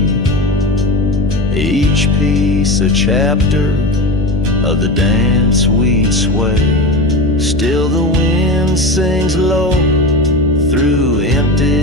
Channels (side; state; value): left; noise; hum, 11 dB below the sound